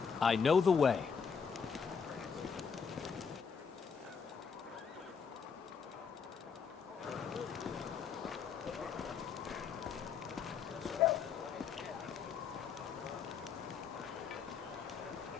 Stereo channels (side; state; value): right; quieter; 6.3 dB